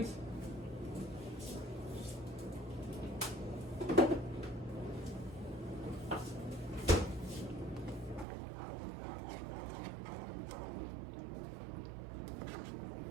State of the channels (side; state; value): left; drops out; at 8.2 s